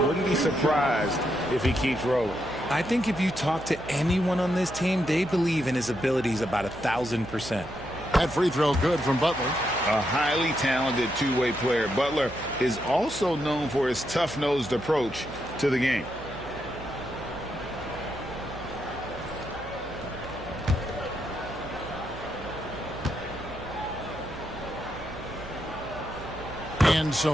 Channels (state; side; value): noise; right; hum, 15 dB below the sound